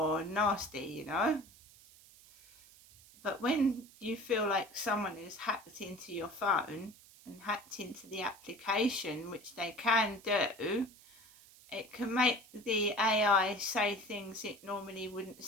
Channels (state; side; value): noise; right; hiss, 23 dB below the sound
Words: nasty, But when you feel like someone has hacked into your phone and hacked into the application, which they can do, it can make the AI say things it normally wouldn't